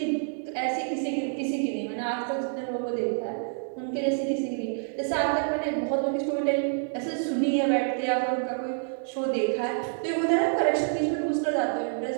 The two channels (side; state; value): left; silent; 60 dB below the other